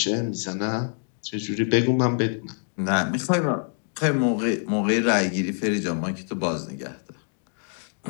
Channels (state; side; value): silent; right; 61 dB below the other